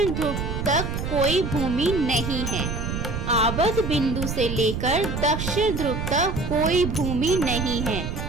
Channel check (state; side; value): noise; right; rumble, 4 dB below the sound